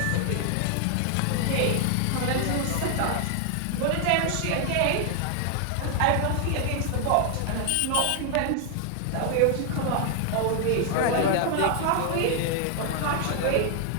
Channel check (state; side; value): different; both; correlation 0.00